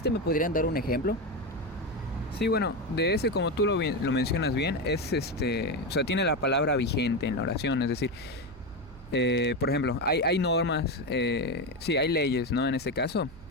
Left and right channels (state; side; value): noise; right; hum, 20 dB below the sound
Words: ¿Me podrían dar un ejemplo? Sí, bueno, de ese, como tú lo mencionas bien, es o sea, tiene la palabra vigente en la oración, es decir, por ejemplo, hay normas, sí, hay leyes, ¿no? En este caso,